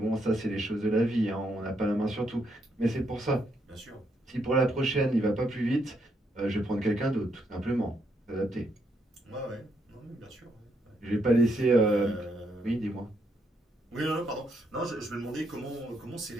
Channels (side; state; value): both; normal; correlation 0.76